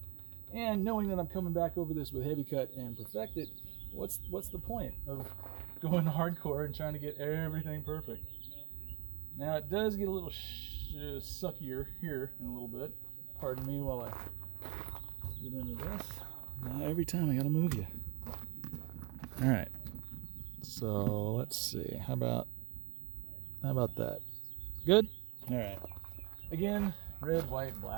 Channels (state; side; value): quieter; left; 27.5 dB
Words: And knowing that I'm coming back over this with Heavy Cut and Perfect It, what's the point of going hardcore and trying to get everything perfect? Now it does get a little suckier here in a little bit. Pardon me while I get into this. Now every time I gotta move you. All right. So let's see. How about that? Good. All right. Again, red, white,